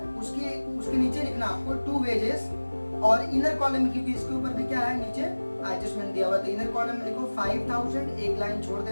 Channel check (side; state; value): both; inverted; correlation -1.00